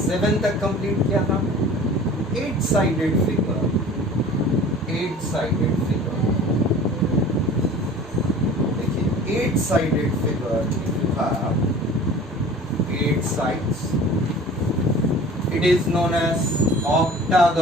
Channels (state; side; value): normal; both; correlation 0.43